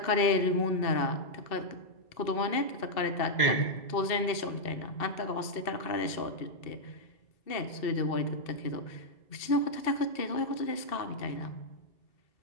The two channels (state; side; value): late; right; 2.6 ms